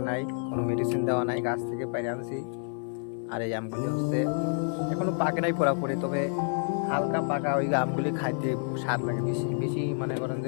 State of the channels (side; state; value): right; silent; 59 dB below the other